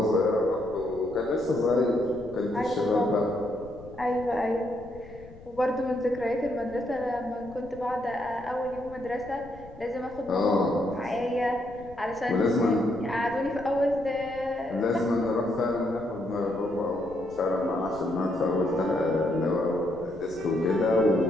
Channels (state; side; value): noise; left; rumble, 20 dB below the sound